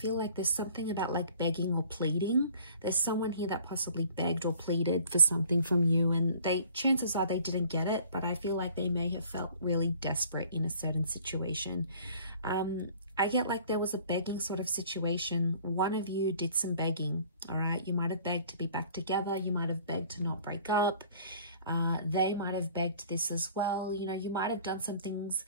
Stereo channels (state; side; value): inverted; both; correlation -0.52